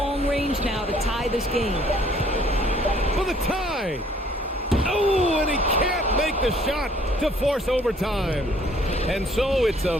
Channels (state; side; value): normal; both; correlation 0.60